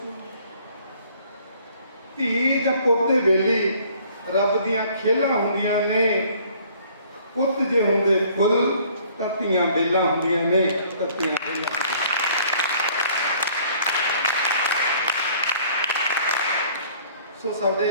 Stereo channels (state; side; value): inverted; both; correlation -0.56